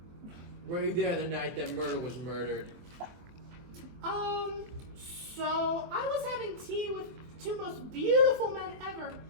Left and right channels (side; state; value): left; late; 24 ms